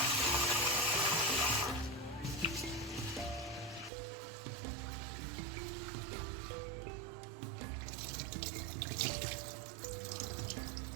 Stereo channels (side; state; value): left; drops out; at 3.9 s